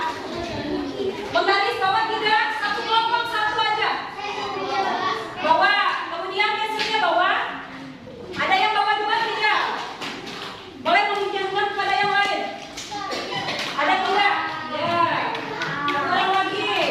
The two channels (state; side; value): identical; both; correlation 1.00